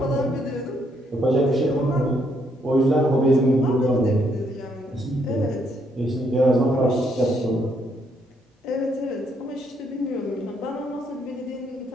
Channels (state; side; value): normal; both; correlation 0.73